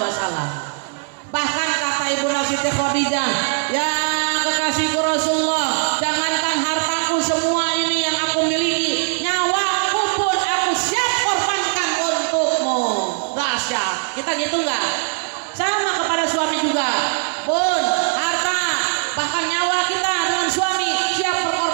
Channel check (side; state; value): left; quieter; 40.0 dB